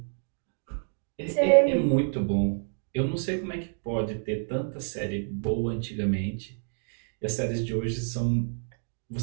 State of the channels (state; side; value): silent; left; digital silence